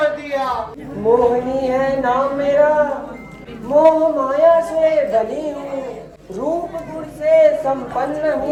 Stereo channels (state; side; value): identical; both; correlation 1.00